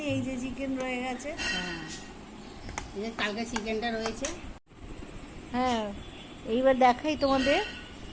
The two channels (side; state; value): both; identical; correlation 1.00